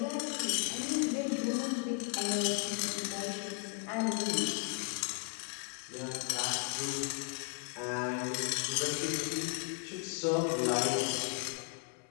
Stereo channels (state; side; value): quieter; right; 37.0 dB